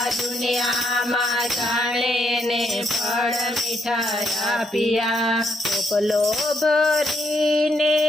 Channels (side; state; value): both; normal; correlation 0.76